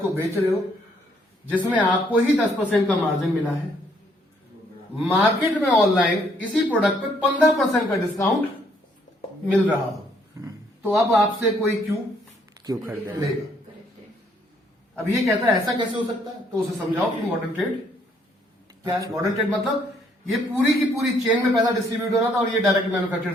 को बेच रहे हो, जिसमें आपको ही 10% का मार्जिन मिला है, मार्केट में ऑनलाइन इसी प्रोडक्ट पे 15% का डिस्काउंट मिल रहा हो, तो अब आपसे कोई क्यों खरीदेगा? लेगा? अब ये कहता है ऐसा कैसे हो सकता है, तो उसे समझाओ कि मॉडर्न ट्रेड क्या है। मॉडर्न ट्रेड मतलब ये पूरी की पूरी चेन में पैसा डिस्ट्रीब्यूट हो रहा था और ये डायरेक्ट मैन्युफैक्चर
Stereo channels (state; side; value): normal; both; correlation 0.68